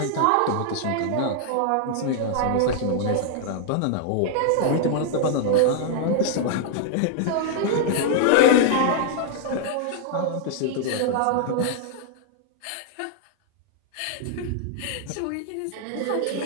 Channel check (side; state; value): both; different; correlation -0.01